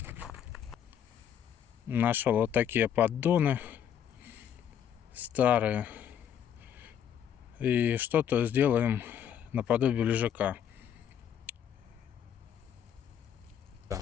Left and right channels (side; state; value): right; quieter; 9.2 dB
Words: Нашел вот такие поддоны старые. И что-то сделаем наподобие лежака. Да.